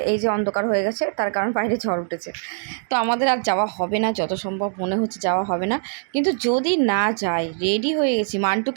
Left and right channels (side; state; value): left; silent; 64 dB below the other